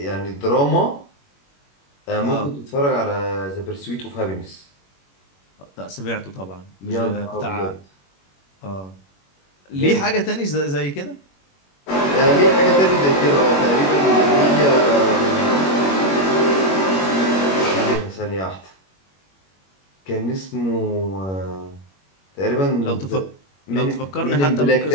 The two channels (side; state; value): right; late; 21 ms